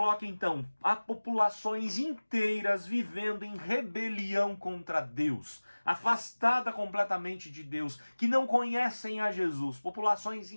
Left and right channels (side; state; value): both; inverted; correlation -1.00